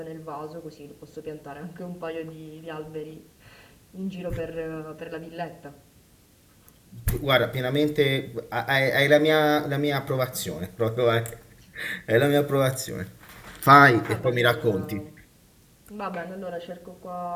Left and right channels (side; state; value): both; identical; correlation 1.00